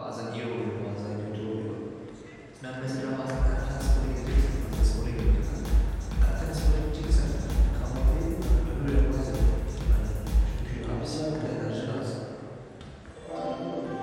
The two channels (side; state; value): both; identical; correlation 1.00